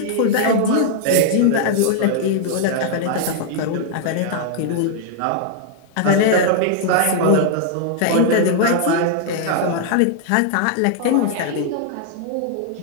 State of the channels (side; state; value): both; different; correlation -0.01